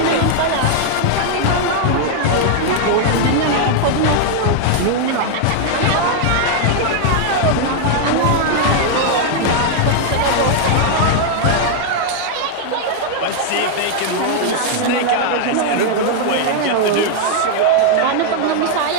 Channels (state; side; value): different; both; correlation 0.00